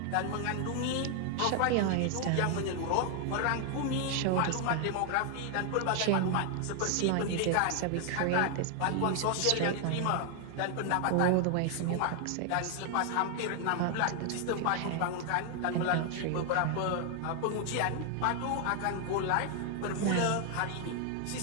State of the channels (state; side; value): different; both; correlation 0.00